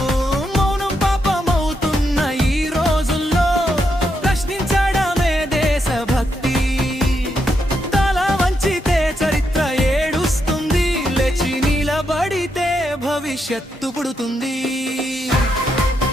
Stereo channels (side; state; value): both; normal; correlation 0.81